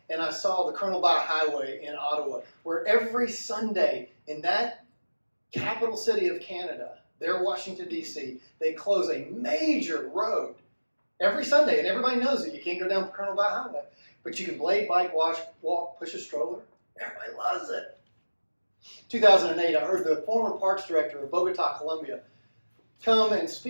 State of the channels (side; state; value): both; inverted; correlation -1.00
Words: and I saw the Colonel By Highway in Ottawa, where every Sunday in that capital city of Canada, there, Washington, D.C., they close a major road every Sunday, and everybody knows it. You can't go down Colonel By Highway, but you can blade, bike, walk, push a stroller. Everybody loves it. 2008, I heard the former parks director of Bogota, Colombia, come and